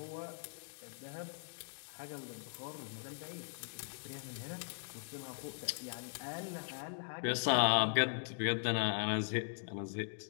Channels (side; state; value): right; silent; digital silence